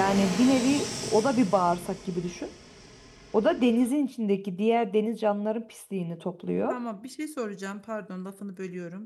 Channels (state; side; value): identical; both; correlation 1.00